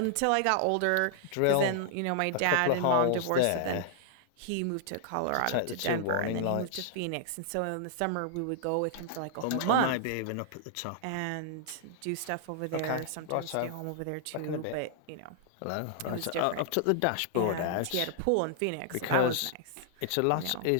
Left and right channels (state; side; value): different; both; correlation -0.01